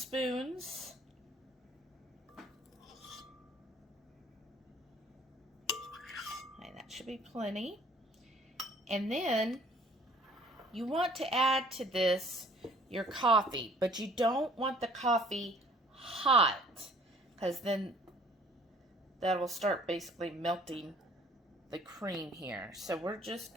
Okay, that should be plenty. And then you want to add to this your coffee, but you don't want the coffee hot, because then that will start basically melting the cream here. So we're just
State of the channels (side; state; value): both; normal; correlation 0.55